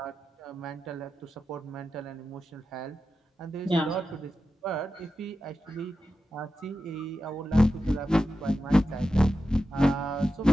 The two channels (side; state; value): both; normal; correlation 0.91